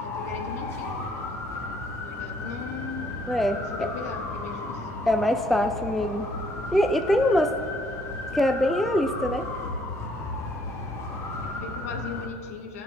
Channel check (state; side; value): normal; both; correlation 0.65